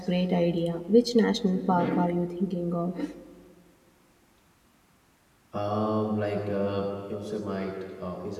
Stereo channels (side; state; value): both; identical; correlation 1.00